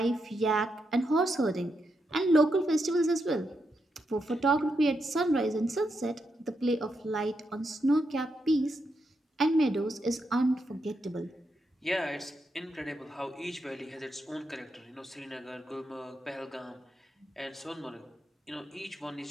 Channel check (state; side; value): normal; both; correlation 0.83